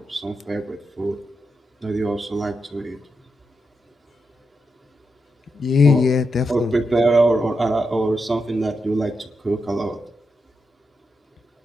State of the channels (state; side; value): normal; both; correlation 0.85